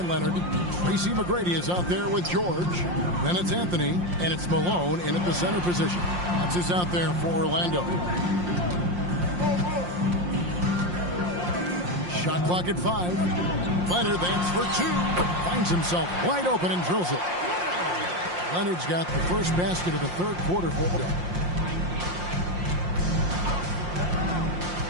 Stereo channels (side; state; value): left; late; 5.7 ms